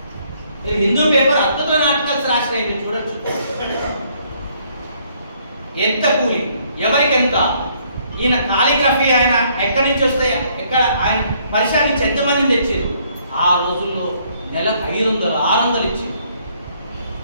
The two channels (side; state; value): both; inverted; correlation -0.67